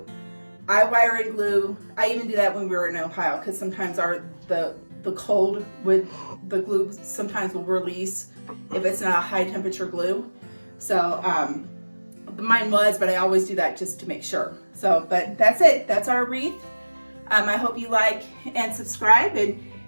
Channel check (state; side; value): inverted; both; correlation -1.00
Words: I wire and glue. I even do that when we were in Ohio because sometimes the cold with the glue sometimes will release if it's not a high temperature glue. So mine was, but I always do that just to make sure. So, but that's it. That's our wreath. I hope you like and subscribe, and